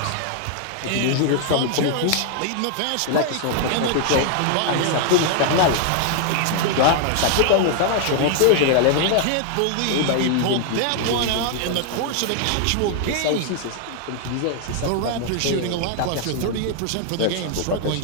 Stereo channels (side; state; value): both; different; correlation 0.00